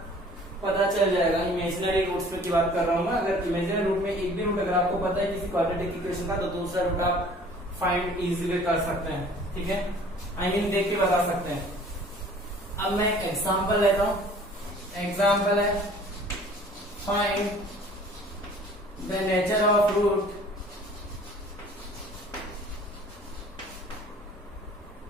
पता चल जाएगा। इमेजिनरी रूट्स में की बात कर रहा हूँ मैं, अगर इमेजिनरी रूट में एक भी रूट अगर आपको पता है किसी क्वाड्रेटिक इक्वेशन का, तो दूसरा रूट आप फाइंड इजीली कर सकते हैं, ठीक है, आई मीन देख के बता सकते हैं। अब मैं एक एग्जांपल लेता हूं, एग्जांपल है find the nature of root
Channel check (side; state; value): both; normal; correlation 0.50